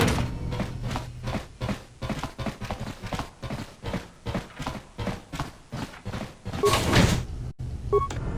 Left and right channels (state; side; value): identical; both; correlation 1.00